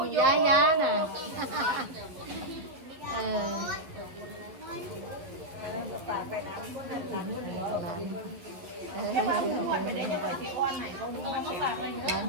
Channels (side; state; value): left; late; 11 ms